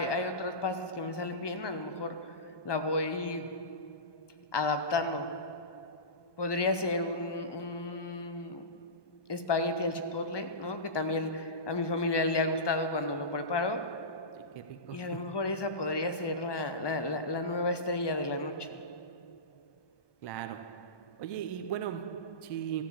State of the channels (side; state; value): right; late; 1.2 ms